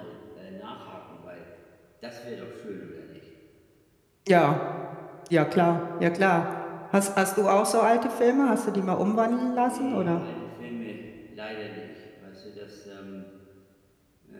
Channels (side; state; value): both; identical; correlation 1.00